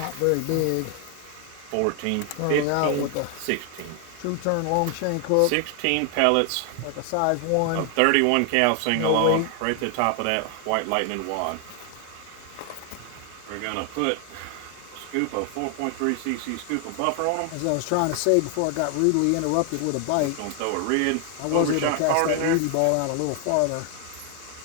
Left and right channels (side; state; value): both; different; correlation 0.00